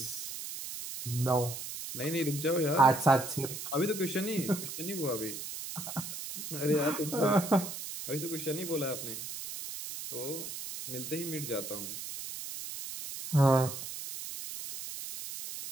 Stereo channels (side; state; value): right; noise; hiss, 8 dB below the sound